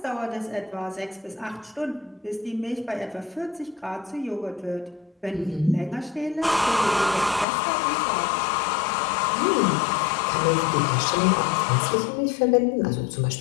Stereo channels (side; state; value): right; drops out; at 7.5 s